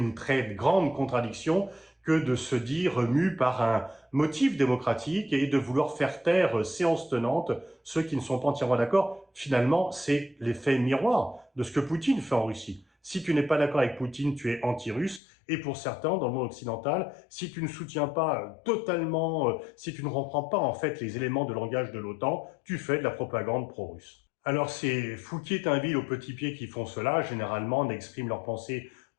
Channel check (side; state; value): right; drops out; at 15.2 s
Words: très grande contradiction que de se dire mu par un motif démocratique et de vouloir faire taire séance tenante ceux qui ne sont pas entièrement d'accord. Finalement, c'est l'effet miroir de ce que Poutine fait en Russie. Si tu n'es pas d'accord avec Poutine, tu es anti-russe. Et pour certains, dans le monde occidental, si tu ne soutiens pas totalement, si tu ne reprends pas en fait les éléments de langage de l'OTAN, tu fais de la propagande pro-russe. Alors c'est Fouquier-Tinville aux petits pieds qui font cela, généralement n'expriment leur pensée